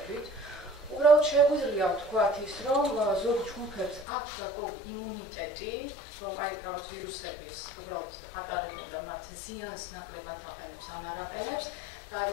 უბრალოდ შეგვიძლია ვთქვათ ის, რომ ზოგ ჯგუფებს აქვს გარკვეული იმუნიტეტი, რომ აი რაღაც ვირუსების უბრალოდ ატარებენ და მათ ზიანს ნაკლებად აყენებს ან არ აყენებს. და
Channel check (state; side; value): drops out; right; at 4.0 s